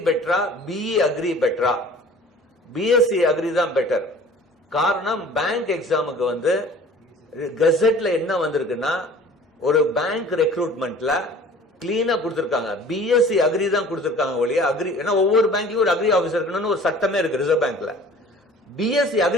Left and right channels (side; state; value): both; normal; correlation 0.47